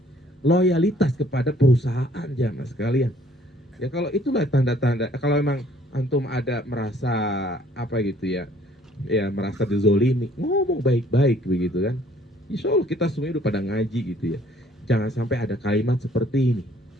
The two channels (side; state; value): both; normal; correlation 0.59